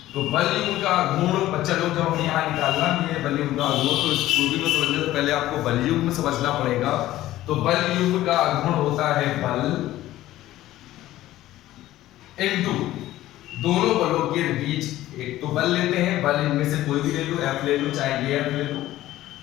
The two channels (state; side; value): quieter; right; 15.0 dB